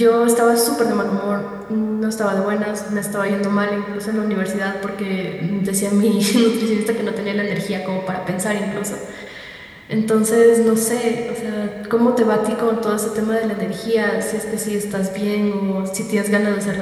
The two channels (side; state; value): both; identical; correlation 1.00